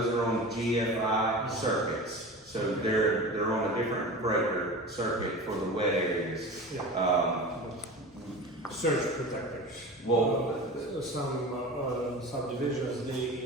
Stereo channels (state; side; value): normal; both; correlation 0.32